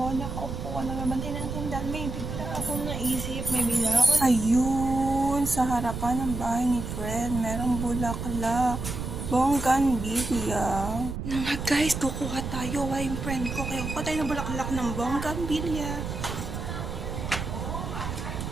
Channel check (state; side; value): noise; right; rumble, 5 dB below the sound